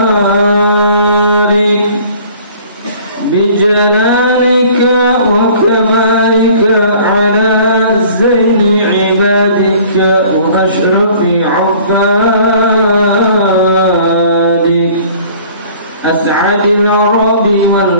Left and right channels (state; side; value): inverted; both; correlation -0.51